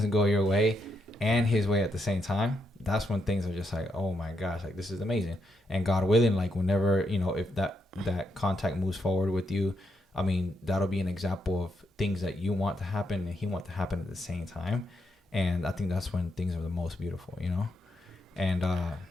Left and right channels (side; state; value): both; normal; correlation 0.80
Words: go your way and his way at the same time, that's when things are just like, oh my gosh, like, this is amazing. And God willing, like, whenever, you know, if that contact moves forward with you, I mean, that'll be an example of things that you want to happen and he wants to happen at the same time. And I think that's when things are the most beautiful, you know? And